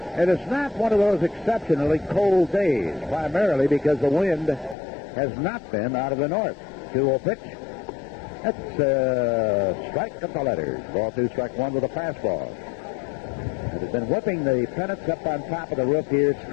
And it's not one of those exceptionally cold days, primarily because the wind has not been out of the north. 2-0 pitch. That's strike of the letters. Ball 2, strike 1 with a fastball. It has been whipping the pennants up on top of the roof here,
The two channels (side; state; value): right; drops out; at 4.8 s